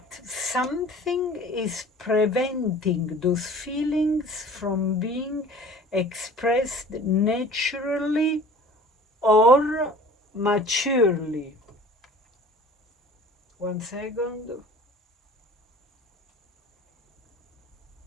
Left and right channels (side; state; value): both; normal; correlation 0.45